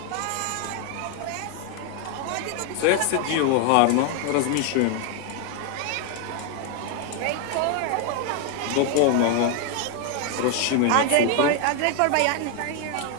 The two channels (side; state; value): both; different; correlation 0.01